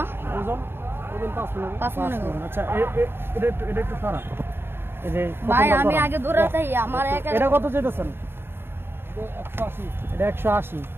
ওজন 5 মণ। আচ্ছা, এটা একটু সারা। ভাই আমি আগে দূরে যাই, আমার এটা কত চাইতেছেন? 180। এটা 180।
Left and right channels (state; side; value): late; left; 0.11 ms